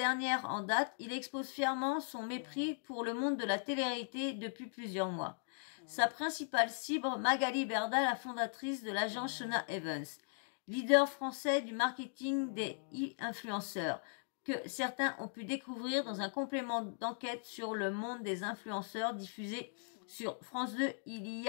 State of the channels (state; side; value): silent; right; digital silence